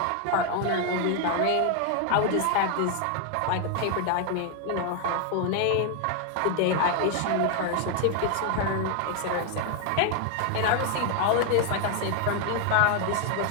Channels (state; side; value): different; both; correlation 0.00